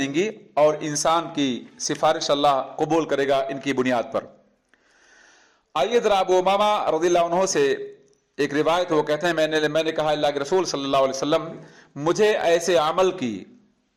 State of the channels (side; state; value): both; identical; correlation 1.00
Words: और इंसान की सिफारिश अल्लाह कबूल करेगा इनकी बुनियाद पर। आइए ज़रा अबू उमामा रज़ियल्लाहु अन्हु से एक रिवायत, वो कहते हैं, मैंने कहा, अल्लाह के रसूल सल्लल्लाहु अलैहि वसल्लम, मुझे ऐसे अमल की